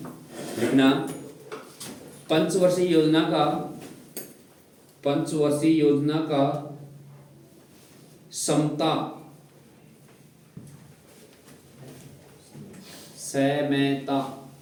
लिखना पंचवर्षीय योजना का समता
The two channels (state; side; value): identical; both; correlation 1.00